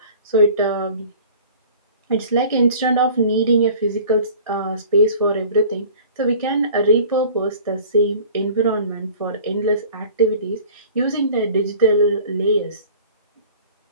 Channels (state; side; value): inverted; both; correlation -0.46